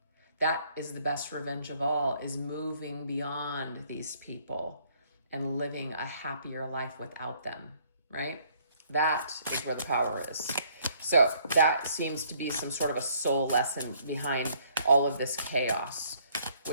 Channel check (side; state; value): both; inverted; correlation -0.63